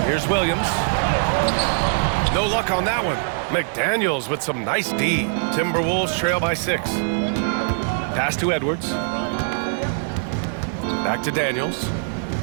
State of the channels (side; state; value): left; silent; digital silence